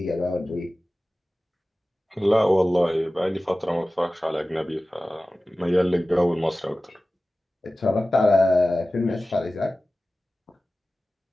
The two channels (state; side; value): normal; both; correlation 0.96